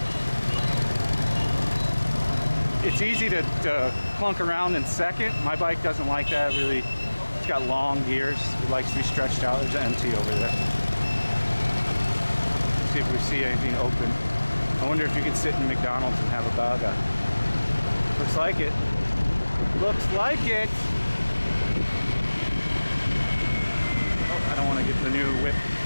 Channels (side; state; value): both; inverted; correlation -1.00